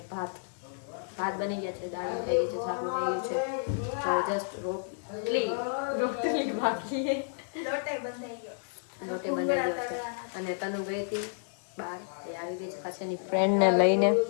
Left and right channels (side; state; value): right; silent; digital silence